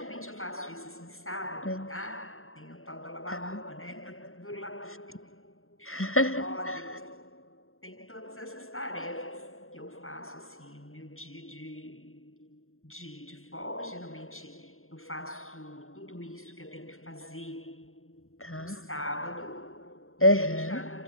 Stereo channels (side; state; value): right; late; 0.61 ms